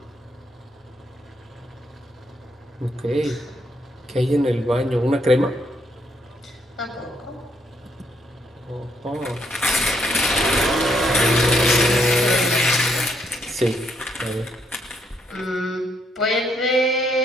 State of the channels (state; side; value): normal; both; correlation 0.74